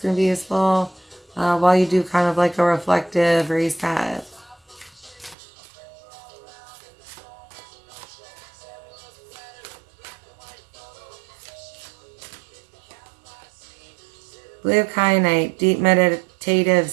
to be useful, while you do kind of like a reflective reset. Blue kyanite, deep meditative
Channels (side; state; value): left; drops out; at 5.4 s